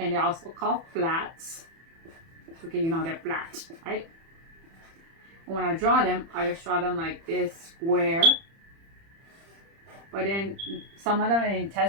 they're also called flats. Okay, you know they're flat, right? And when I draw them, I just draw them like this square. But then some of them in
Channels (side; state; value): left; late; 30 ms